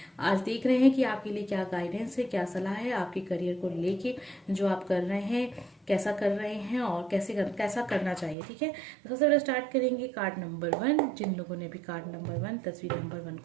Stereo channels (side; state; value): left; drops out; at 8.3 s